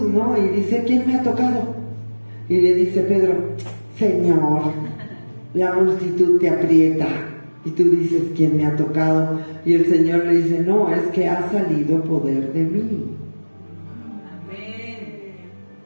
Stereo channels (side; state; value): both; inverted; correlation -1.00